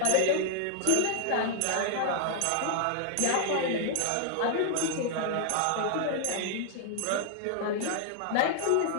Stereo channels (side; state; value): both; different; correlation 0.00